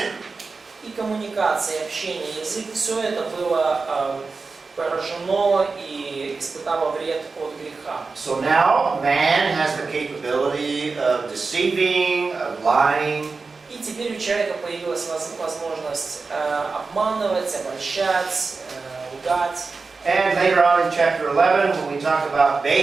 И коммуникация, и общение, язык, все это было поражено и испытало вред от греха. So now man has the capability of deceiving, of lying. И теперь у человека появилась возможность обманывать, обольщать, лгать. And later on in chapter 11, when we talk about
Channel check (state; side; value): quieter; left; 4.3 dB